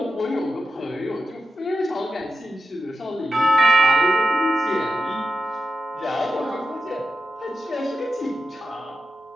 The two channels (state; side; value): normal; both; correlation 0.89